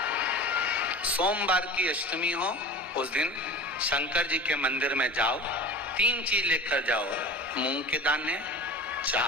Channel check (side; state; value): both; normal; correlation 0.35